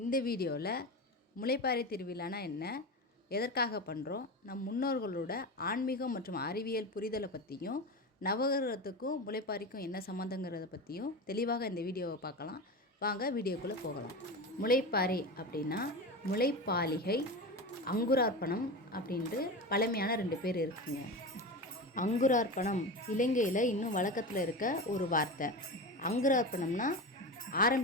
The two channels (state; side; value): normal; both; correlation 0.24